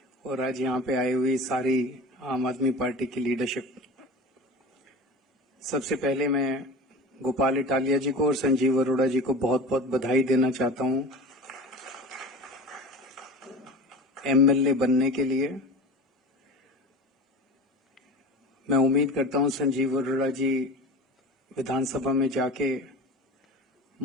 और आज यहाँ पे आई हुई सारी आम आदमी पार्टी की लीडरशिप। सबसे पहले मैं गोपाल इटालिया जी को और संजीव अरोड़ा जी को बहुत बहुत बधाई देना चाहता हूँ एमएलए बनने के लिए। मैं उम्मीद करता हूँ संजीव अरोड़ा जी विधानसभा में जाके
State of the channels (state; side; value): normal; both; correlation 0.34